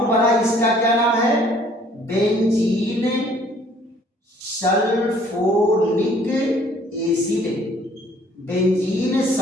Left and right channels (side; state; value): both; normal; correlation 0.58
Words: बना इसका क्या नाम है, benzene sulphonic acid, benzene